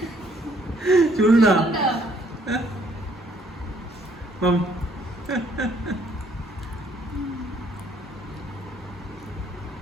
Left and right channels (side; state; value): both; normal; correlation 0.65